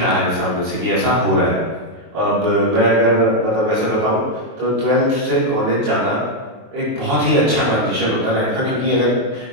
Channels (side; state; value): left; late; 23 ms